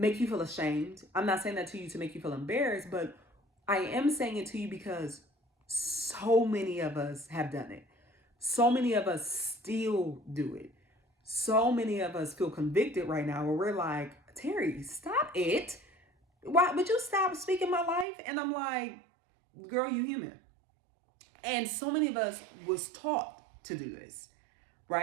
you feel ashamed. I'm not saying that to you to make you feel embarrassed, but I am saying it to you because so many of us have done it. So many of us still do it. So many of us feel convicted right now where we're like, Teri, stop it. Why would you stop speaking my life? And I'm like, girl, you human. And so many of us was taught to do this,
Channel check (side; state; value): left; drops out; at 18.1 s